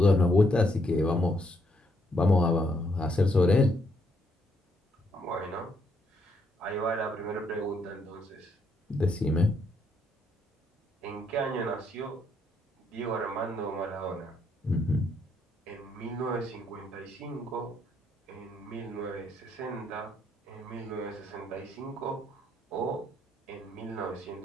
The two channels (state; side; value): normal; both; correlation 0.73